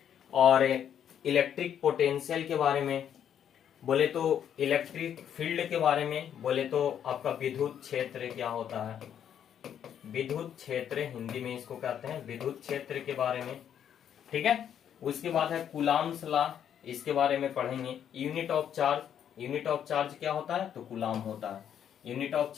और इलेक्ट्रिक पोटेंशियल के बारे में, बोले तो इलेक्ट्रिक फील्ड के बारे में, बोले तो आपका विद्युत क्षेत्र क्या होता है, विद्युत क्षेत्र हिंदी में इसको कहते हैं, विद्युत क्षेत्र के बारे में। ठीक है, उसके बाद है कूलाम्स लॉ, इसके बारे में पढ़ेंगे। Unit of charge, unit of charge क्या होता है, तो कूलाम होता है। यूनिट ऑफ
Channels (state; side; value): quieter; right; 9.2 dB